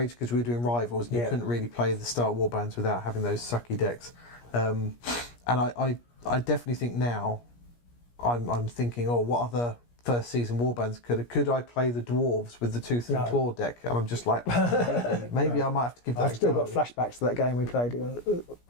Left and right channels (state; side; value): late; right; 17 ms